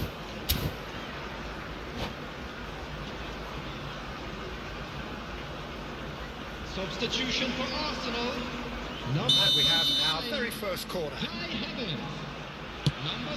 Substitution for Arsenal. Number And we have our 39, very first corner. Kai Havertz. Number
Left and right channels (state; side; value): identical; both; correlation 1.00